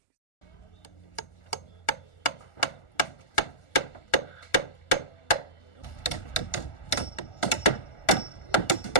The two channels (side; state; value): right; late; 1.4 ms